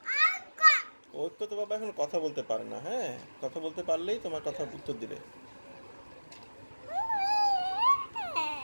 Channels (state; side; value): inverted; both; correlation -1.00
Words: ওর তো বাবা এখন কথা বলতে পারে না, হ্যাঁ। কথা বলতে পারলেই তোমার কথা উত্তর দিবে।